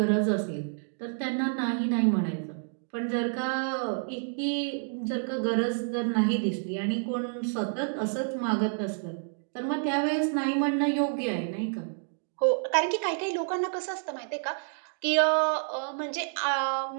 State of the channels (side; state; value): left; silent; digital silence